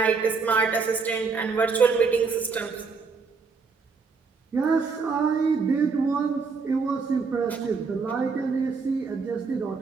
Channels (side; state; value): left; quieter; 4.8 dB